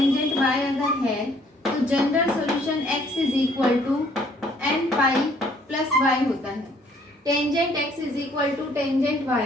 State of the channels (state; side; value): normal; both; correlation 0.62